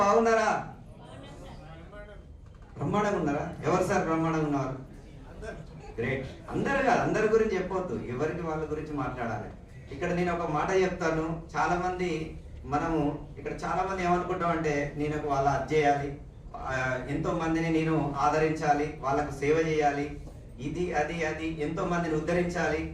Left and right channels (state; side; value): identical; both; correlation 1.00